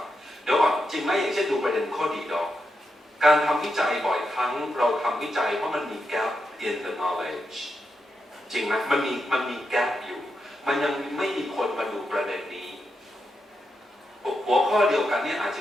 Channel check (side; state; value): both; normal; correlation 0.85